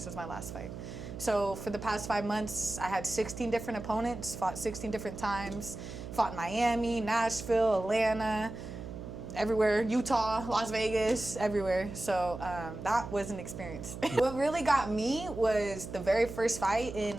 was my last fight. So for the past 5 months, I had 16 different opponents, fought 16 different times, fought in Miami, Nashville, Atlanta, everywhere, Utah, Las Vegas, everywhere. So that was an experience. What really got me was the very first fight in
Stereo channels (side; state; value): right; noise; hum, 10 dB below the sound